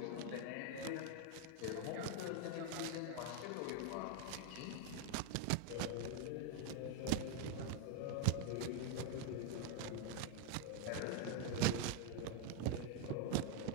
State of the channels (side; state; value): both; different; correlation 0.00